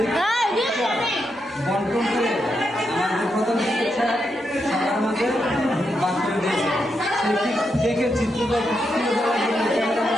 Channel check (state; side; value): normal; both; correlation 0.83